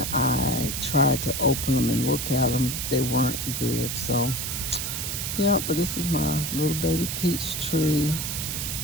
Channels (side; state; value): right; noise; hiss, 3 dB below the sound